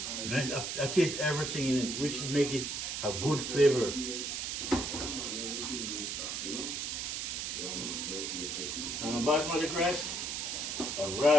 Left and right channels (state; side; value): noise; right; hiss, 3 dB below the sound